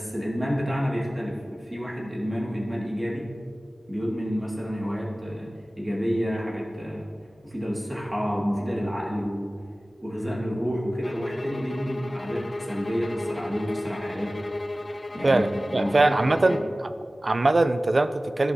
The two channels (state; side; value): normal; both; correlation 0.97